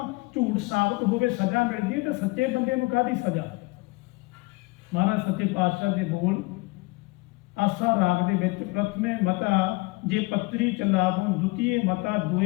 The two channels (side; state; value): right; quieter; 24.7 dB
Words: ਝੂਠ ਸਾਬਤ ਹੋਵੇ ਸਜ਼ਾ ਮਿਲਦੀ ਹੈ, ਤੇ ਸੱਚੇ ਬੰਦੇ ਨੂੰ ਕਾਹਦੀ ਸਜ਼ਾ। ਮਹਾਰਾਜ ਸੱਚੇ ਪਾਤਸ਼ਾਹ ਦੇ ਬੋਲ ਆਸਾ ਰਾਗ ਦੇ ਵਿੱਚ ਪ੍ਰਥਮੇ ਮਤਾ ਜੇ ਪੱਤਰੀ ਚਲਾਵੋ, ਦੁਤੀਏ ਮਤਾ